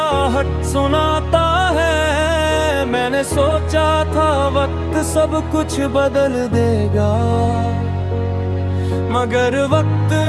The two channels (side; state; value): both; identical; correlation 1.00